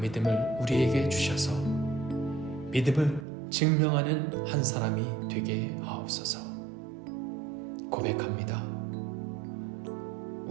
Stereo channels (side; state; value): left; drops out; at 3.2 s